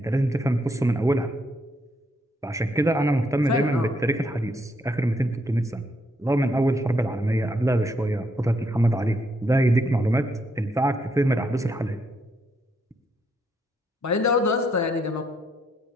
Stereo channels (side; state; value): both; normal; correlation 0.75